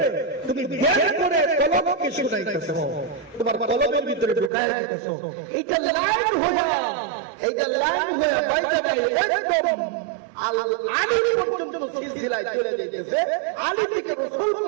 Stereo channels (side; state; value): left; drops out; at 4.5 s